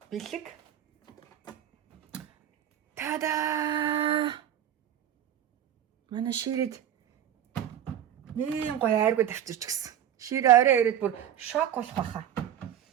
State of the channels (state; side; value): quieter; left; 10.5 dB